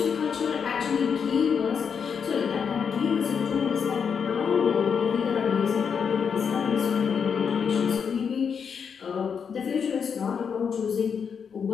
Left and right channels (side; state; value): right; quieter; 6.7 dB